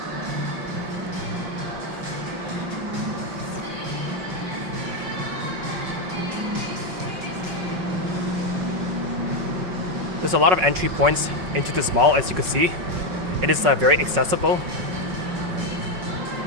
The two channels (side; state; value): left; late; 5.4 ms